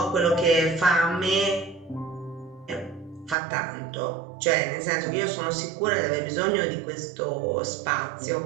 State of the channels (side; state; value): left; drops out; at 3.4 s